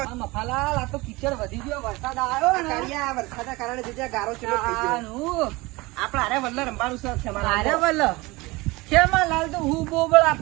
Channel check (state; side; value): quieter; left; 22.6 dB